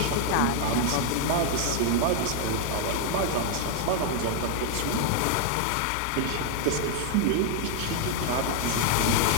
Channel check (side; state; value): both; different; correlation 0.00